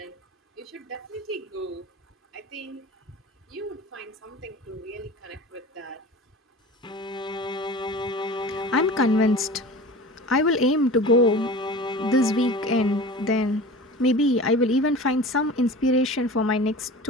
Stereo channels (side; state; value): both; normal; correlation 0.37